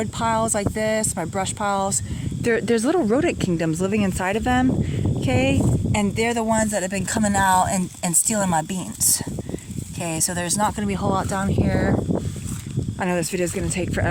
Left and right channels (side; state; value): both; identical; correlation 1.00